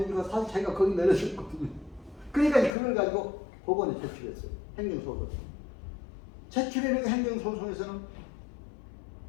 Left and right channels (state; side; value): drops out; right; at 2.7 s